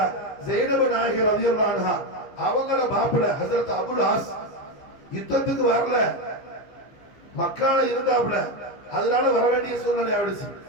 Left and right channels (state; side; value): late; right; 15 ms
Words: ஸைனப் நாயகி ரலியல்லாஹு அன்ஹா அவங்கள மாப்பிள்ளை ஹஜ்ரத் அபுல் ஆஸ் யுத்தத்துக்கு வரல, மக்கால இருந்தாப்புல, அதனால வர வேண்டிய சூழ்நிலை ஆயிடுச்சு.